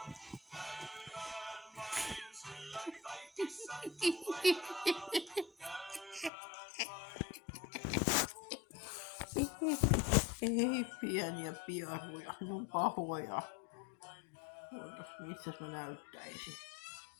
Ei pieniä piaruja, ne on pahoja. Missä mä näyttäisin?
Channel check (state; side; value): drops out; right; at 6.3 s